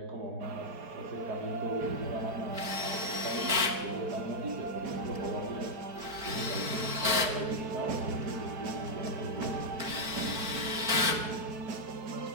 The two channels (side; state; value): left; late; 4.4 ms